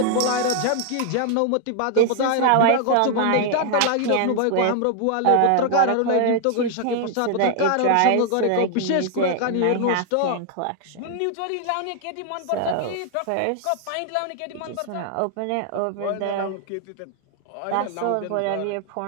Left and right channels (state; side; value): different; both; correlation 0.00